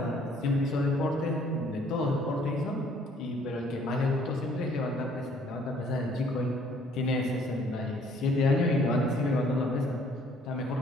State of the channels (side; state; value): both; normal; correlation 0.61